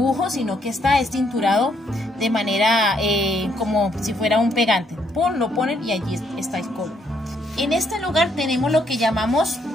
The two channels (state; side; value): normal; both; correlation 0.72